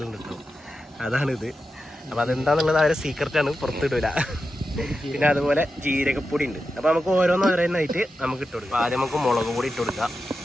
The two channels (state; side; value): normal; both; correlation 0.90